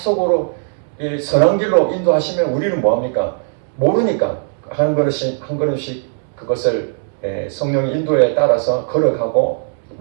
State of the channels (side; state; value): left; silent; 68 dB below the other